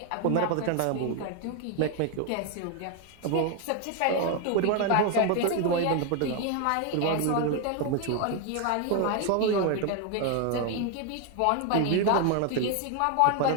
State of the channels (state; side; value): different; both; correlation 0.01